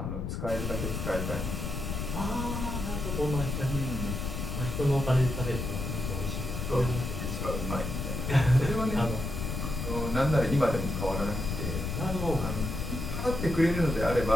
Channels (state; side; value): noise; left; rumble, 4 dB below the sound